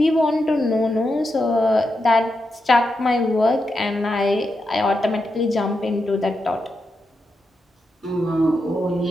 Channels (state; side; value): normal; both; correlation 0.86